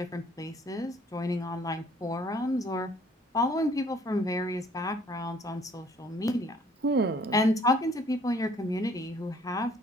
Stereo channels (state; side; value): normal; both; correlation 0.59